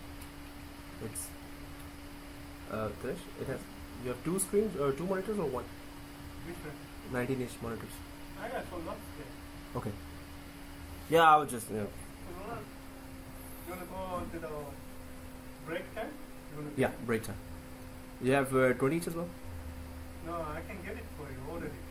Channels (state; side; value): identical; both; correlation 1.00